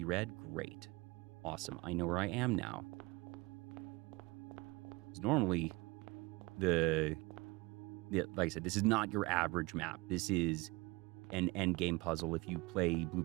red. Great. Awesome. I know where I am now. Because normally, like I said, this is not your average map. This is an end game puzzle. If you play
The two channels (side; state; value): left; quieter; 24.0 dB